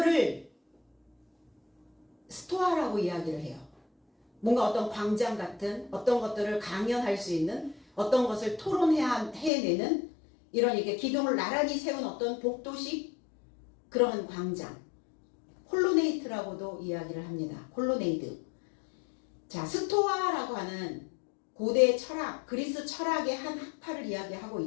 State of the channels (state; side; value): drops out; right; at 9.5 s